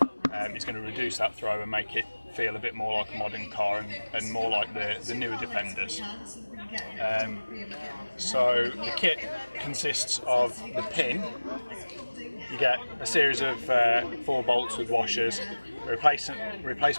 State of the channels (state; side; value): inverted; both; correlation -1.00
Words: is going to reduce that throw and make it feel a bit more like a modern car and more like the newer Defenders. So the kit consists of the pin. You get a series of 4 bolts with washers, a